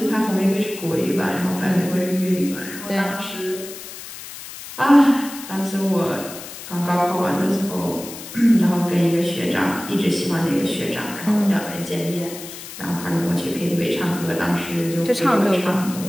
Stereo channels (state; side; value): noise; left; hiss, 12 dB below the sound